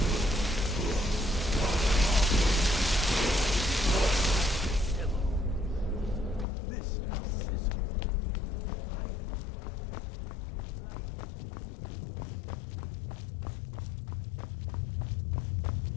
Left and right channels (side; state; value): right; drops out; at 6.5 s